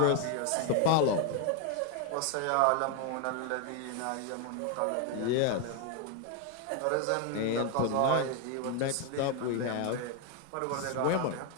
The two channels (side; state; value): both; different; correlation 0.01